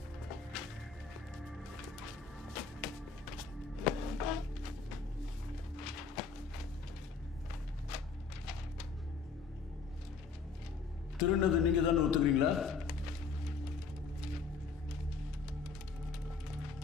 திருநது நீங்க தானே ஒத்துக்கிறீங்களா?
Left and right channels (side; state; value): right; quieter; 5.1 dB